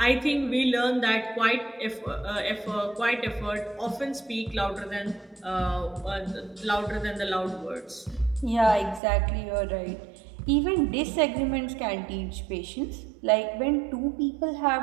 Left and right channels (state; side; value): drops out; left; at 9.0 s